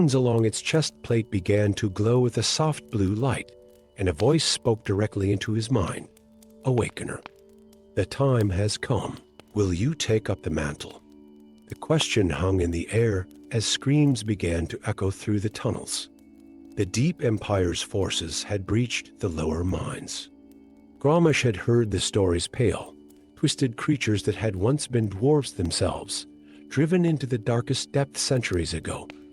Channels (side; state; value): both; identical; correlation 1.00